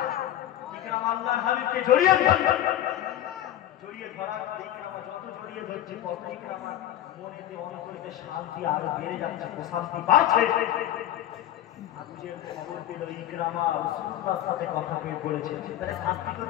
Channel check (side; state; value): right; quieter; 12.4 dB